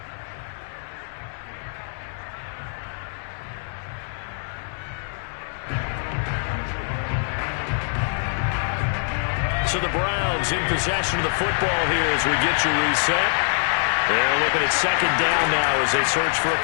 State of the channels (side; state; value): right; silent; 61 dB below the other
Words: So the Browns in possession of the football here as we get you reset. They're looking at second down now as they search for a